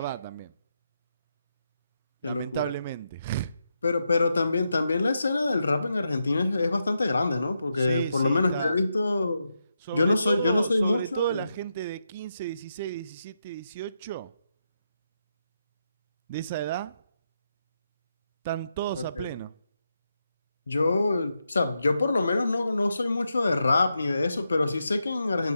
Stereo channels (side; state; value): both; inverted; correlation -0.85